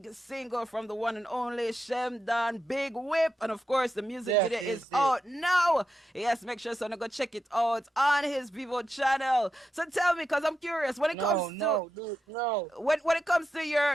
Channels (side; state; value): both; normal; correlation 0.87